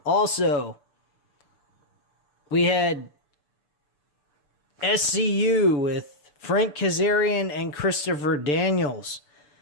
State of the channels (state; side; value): late; right; 6.8 ms